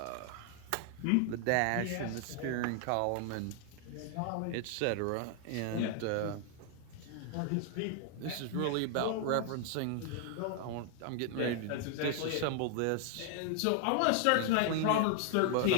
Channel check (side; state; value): both; different; correlation 0.00